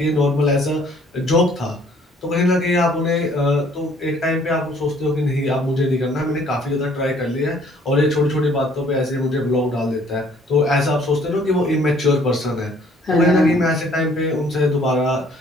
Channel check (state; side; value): normal; both; correlation 0.59